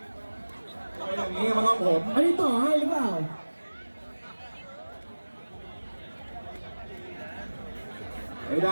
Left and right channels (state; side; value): inverted; both; correlation -1.00